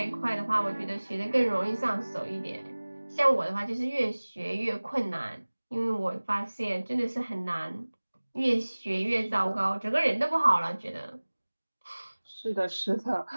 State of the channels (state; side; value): inverted; both; correlation -1.00